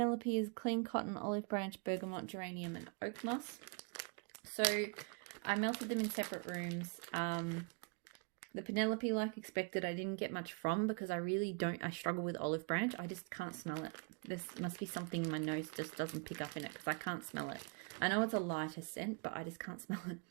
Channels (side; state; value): left; quieter; 35.4 dB